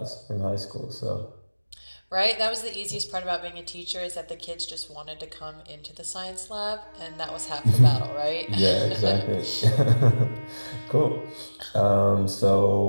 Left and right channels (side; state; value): both; inverted; correlation -1.00